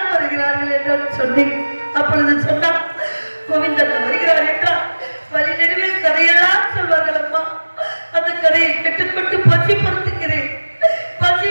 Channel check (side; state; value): both; inverted; correlation -1.00